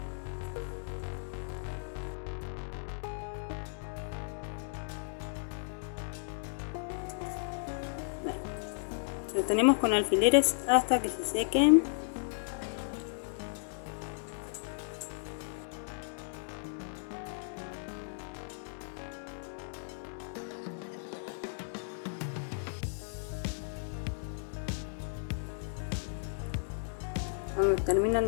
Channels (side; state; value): right; silent; digital silence